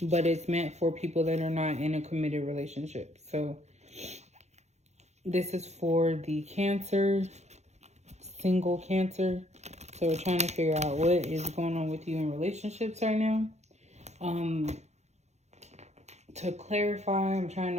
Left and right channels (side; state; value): left; late; 0.33 ms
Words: But it's meant for people that are not in a committed relationship. So this is for the Cancer, single Cancer. So we're trying to figure out what is going on with you in relationships right now. To clarify, I'm trying